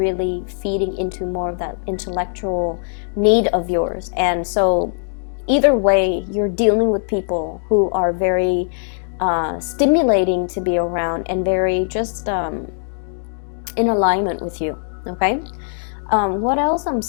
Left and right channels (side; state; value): right; silent; digital silence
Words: feeding into more of that intellectual need of yours. And so either way, you're dealing with people who are very stimulating to be around and very just in alignment with you, okay? What else I'm